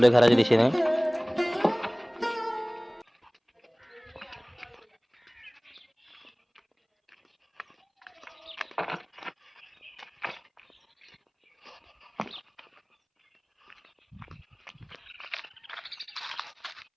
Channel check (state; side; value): identical; both; correlation 1.00